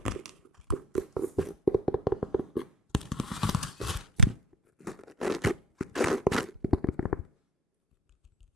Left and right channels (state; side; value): normal; both; correlation 0.40